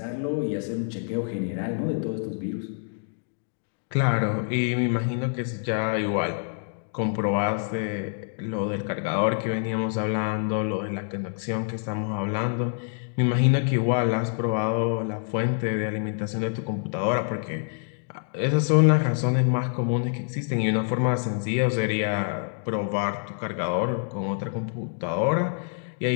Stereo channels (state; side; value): silent; right; digital silence